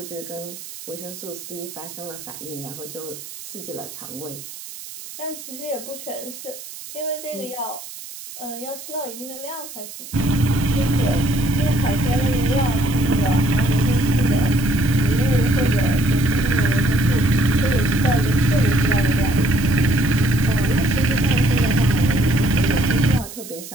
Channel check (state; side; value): noise; right; hiss, 13 dB below the sound